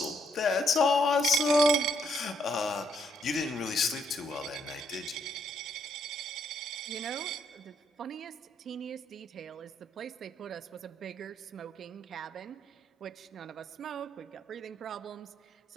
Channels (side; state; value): both; normal; correlation 0.71